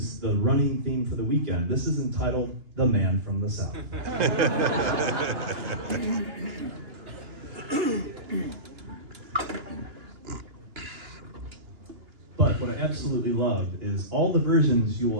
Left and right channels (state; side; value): late; left; 2.9 ms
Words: the running theme for the weekend. This is entitled "The Man from the South." But what I absolutely love is all the versions you